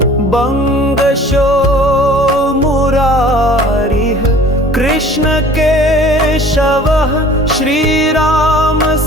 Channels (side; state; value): both; normal; correlation 0.48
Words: बंगशो मुरारिः कृष्ण केशवः श्रीराम